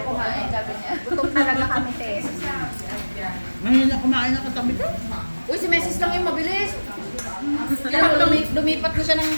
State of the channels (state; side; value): inverted; both; correlation -1.00